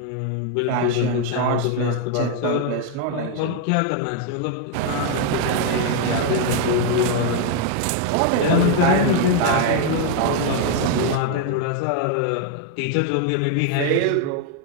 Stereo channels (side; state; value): both; different; correlation 0.00